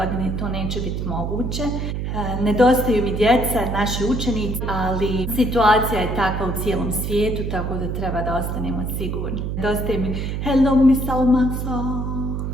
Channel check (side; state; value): right; noise; hum, 3 dB below the sound